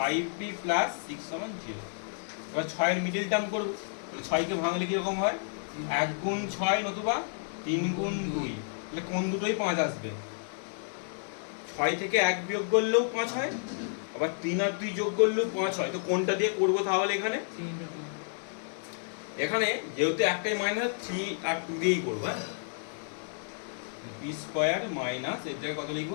plus 6 সমান 0। এবার 6 এর মিডল টার্ম করব, তাহলে 6 কে ভাঙলে কি রকম হয় 1 গুণ 6 নতুবা 3 গুণ 2, তাহলে কোন দুটোই 5 আসবে। 6 থেকে 1 বিয়োগ করলেও 5 হয়, আবার 3 আর 2 যোগ করলেও 5 হয়। তো কোনটা দিয়ে করব তাহলে এখানে, এখানে যেহেতু একটাই মাইনাস 3 আর 2 দিয়েই করব। হ্যাঁ, p স্কয়ার মাইনাস এর জায়গায় কত লিখব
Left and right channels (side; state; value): right; silent; digital silence